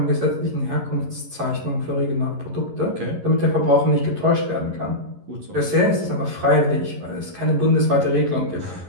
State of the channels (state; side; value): late; left; 11 ms